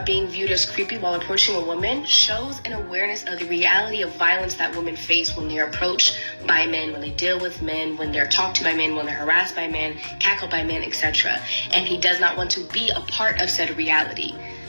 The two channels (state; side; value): inverted; both; correlation -1.00